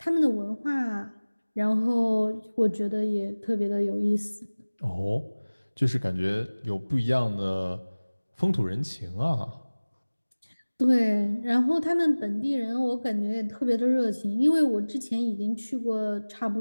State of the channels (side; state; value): both; inverted; correlation -1.00